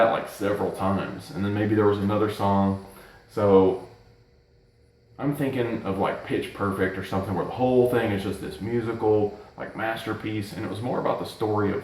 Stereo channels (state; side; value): identical; both; correlation 1.00